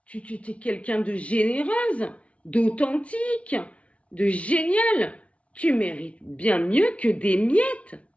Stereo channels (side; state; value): right; late; 0.063 ms